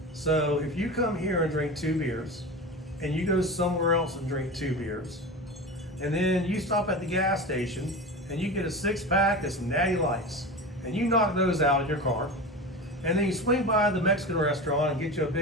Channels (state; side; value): normal; both; correlation 0.28